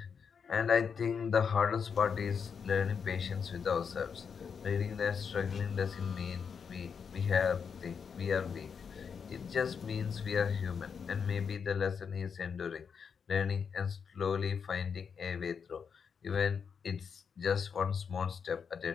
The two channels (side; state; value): right; quieter; 6.4 dB